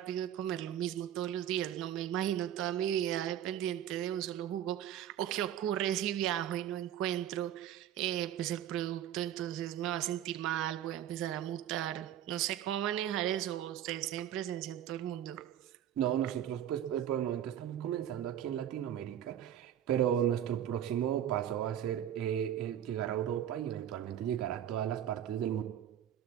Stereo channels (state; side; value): quieter; left; 10.7 dB